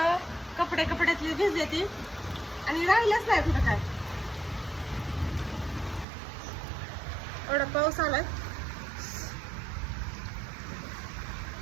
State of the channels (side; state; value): left; drops out; at 6.1 s